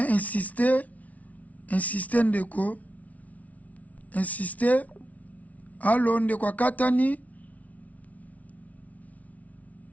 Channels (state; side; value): late; right; 0.070 ms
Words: insister ndeko insister. Allo ndeko katani